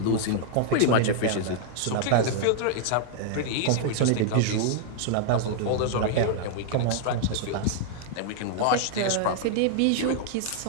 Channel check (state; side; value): different; both; correlation -0.01